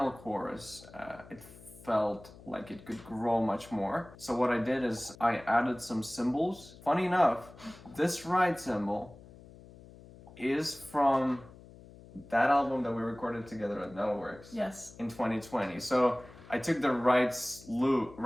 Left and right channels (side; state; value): left; noise; hum, 20 dB below the sound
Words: chorus, it felt like it could grow much more. So what I did is I added some cymbals. Funny enough, this ride cymbal is from that album that we recorded together at Metalworks. Yes. In 2020. So I took the right